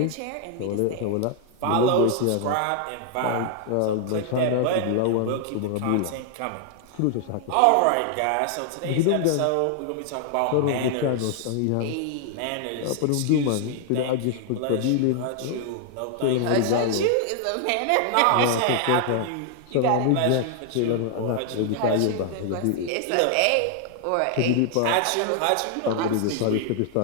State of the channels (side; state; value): both; different; correlation 0.00